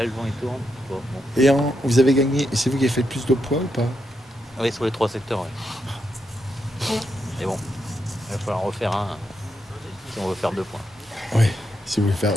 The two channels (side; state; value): both; normal; correlation 0.83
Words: le vent, il tourne. Bon. Et vous avez gagné, c'est vous qui avez fait le plus de poids ou pas? Oui, sur les 3 secteurs, ouais. Et bon, il va falloir en refaire un si on veut faire 2 points. Oui, si vous voulez faire,